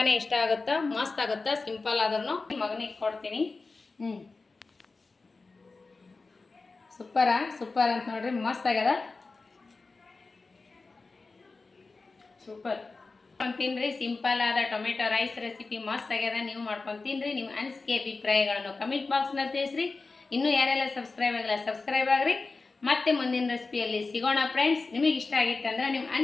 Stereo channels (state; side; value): quieter; right; 3.9 dB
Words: ಇಷ್ಟ ಆಗುತ್ತಾ, ಮಸ್ತ್ ಆಗುತ್ತಾ. ಸಿಂಪಲ್ ಆದ್ರೂ ಮಗನಿಗೆ ಕೊಡ್ತೀನಿ. ಸೂಪರ್ ಅಂತ ನೋಡ್ರಿ, ಮಸ್ತ್ ಆಗ್ಯದ. ಸೂಪರ್ ತಿನ್ರಿ. ಸಿಂಪಲ್ ಆದ ಟೊಮೆಟೊ ರೈಸ್ ರೆಸಿಪಿ ಮಸ್ತ್ ಆಗ್ಯದ. ನೀವು ಮಾಡ್ಕೊಂಡು ತಿನ್ರಿ. ನಿಮ್ಮ ಅನಿಸಿಕೆ ಅಭಿಪ್ರಾಯಗಳನ್ನು ಕಮೆಂಟ್ ಬಾಕ್ಸ್ನಲ್ಲಿ ತಿಳಿಸ್ರಿ. ಇನ್ನೂ ಯಾರೆಲ್ಲ ಸಬ್ಸ್ಕ್ರೈಬ್ ಆಗಿಲ್ಲ ಸಬ್ಸ್ಕ್ರೈಬ್ ಆಗ್ರಿ. ಮತ್ತೆ ಮುಂದಿನ ರೆಸಿಪಿಯಲ್ಲಿ ಸಿಗೋಣ ಫ್ರೆಂಡ್ಸ್. ನಿಮಗೆ ಇಷ್ಟ ಆಗಿತ್ತಂದ್ರೆ ನಿಮ್ಮ